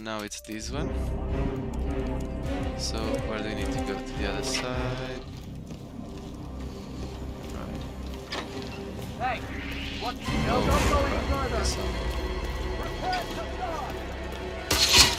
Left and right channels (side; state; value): both; identical; correlation 1.00